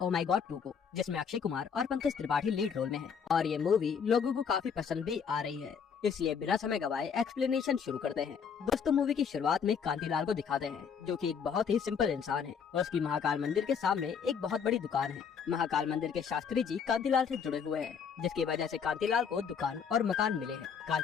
ओ माई गॉड 2 को, जिसमें अक्षय कुमार और पंकज त्रिपाठी लीड रोल में हैं और ये मूवी लोगों को काफी पसंद भी आ रही है। इसलिए बिना समय गवाए एक्सप्लेनेशन शुरू करते हैं। दोस्तों मूवी की शुरुआत में कांतिलाल को दिखाते हैं, जो कि एक बहुत ही सिंपल इंसान है और उसकी महाकाल मंदिर के सामने एक बहुत बड़ी दुकान है। महाकाल मंदिर के शास्त्री जी कांतिलाल से जुड़े हुए हैं, जिसकी वजह से कांतिलाल को दुकान और मकान मिले हैं।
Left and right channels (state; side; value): quieter; right; 6.8 dB